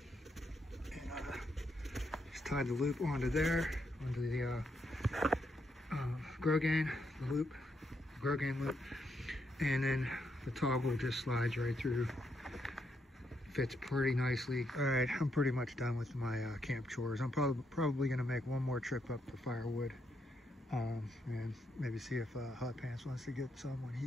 and just tied the loop onto there, onto the Grogan loop, and then the toggle just slides right through. Fits pretty nicely. All right, I'm pretty much done with my camp chores. I'm probably going to make one more trip up for firewood, and maybe see if Hot Pants wants to get some when he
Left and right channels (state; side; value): normal; both; correlation 0.78